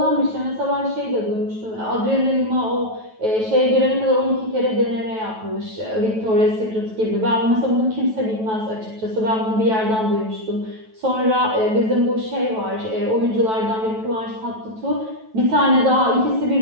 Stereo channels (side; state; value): left; late; 9.2 ms